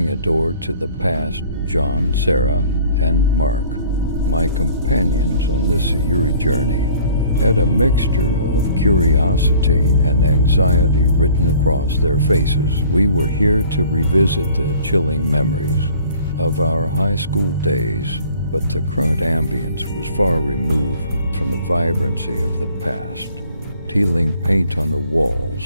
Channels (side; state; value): both; inverted; correlation -0.52